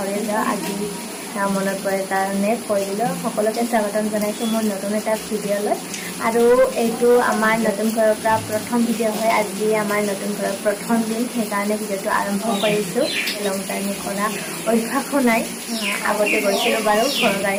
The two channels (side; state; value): both; identical; correlation 1.00